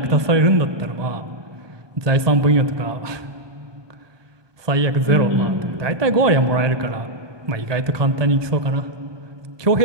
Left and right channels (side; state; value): left; late; 1.2 ms